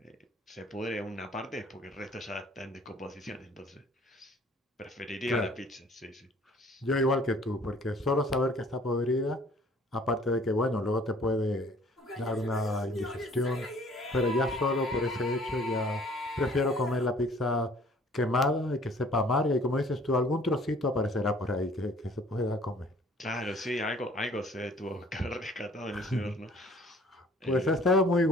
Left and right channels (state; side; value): normal; both; correlation 0.54